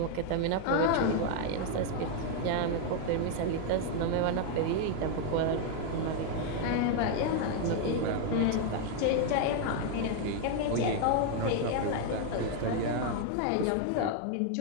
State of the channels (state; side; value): different; both; correlation 0.00